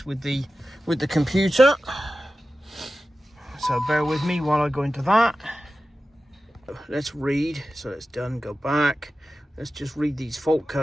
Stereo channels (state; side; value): normal; both; correlation 0.94